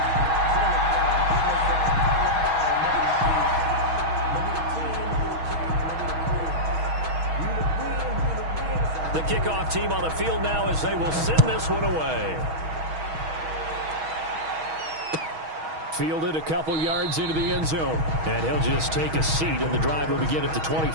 The kickoff team on the field now as they will send this one away. Fielded a couple yards into the end zone. And he'll just take a seat, and the drive will begin at the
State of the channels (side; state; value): left; late; 6.3 ms